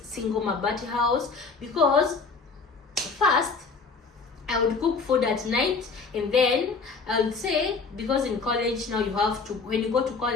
single mabati house because first I would cook food at night, and then I would say, because in college now you have to, when you go to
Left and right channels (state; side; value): quieter; right; 4.5 dB